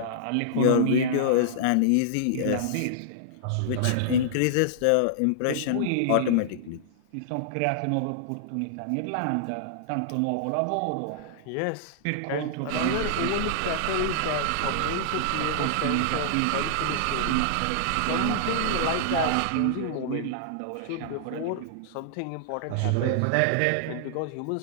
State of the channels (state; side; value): different; both; correlation -0.01